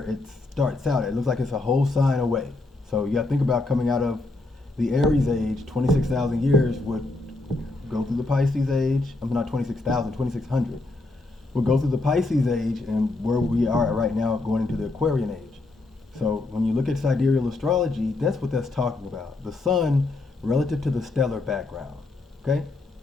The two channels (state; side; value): quieter; right; 3.1 dB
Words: it starts out. It looks like it's a whole sign away. So you got to think about coming out of the Aries age, 26,000 years would go through the Pisces age. I'm not 26,000, 2600. We'll go through the Pisces age and where we are right now going into the Aquarian age. So when you look at sidereal astrology, that's what that's talking about. The sun relative to the stellar background. Okay?